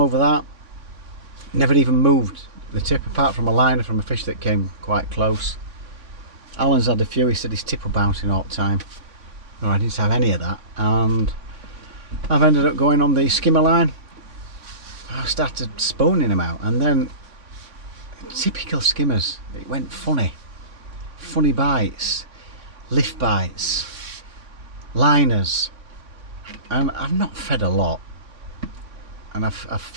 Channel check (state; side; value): late; left; 3.6 ms